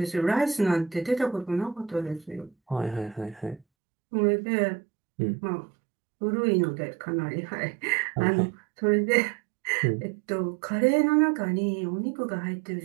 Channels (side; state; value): left; drops out; at 3.7 s